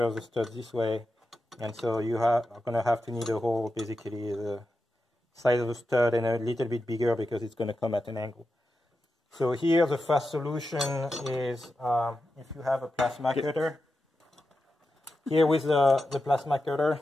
the stud this way, and so you are going to have to need a hole basically the size of the stud and a little bit bigger because it's going to come at an angle. So here the fast solution is if you have a plasma cutter. Here with the plasma cutter,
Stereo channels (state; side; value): normal; both; correlation 0.90